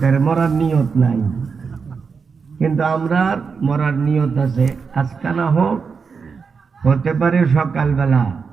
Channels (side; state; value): left; quieter; 5.4 dB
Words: মরার নিয়ত নাই, কিন্তু আমরা মরার নিয়ত আছে। আজকে না হোক, হতে পারে সকালবেলা